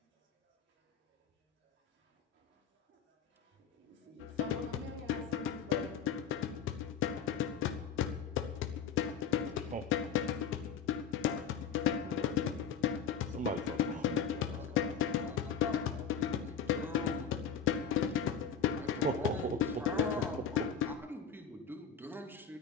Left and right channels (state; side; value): quieter; right; 6.9 dB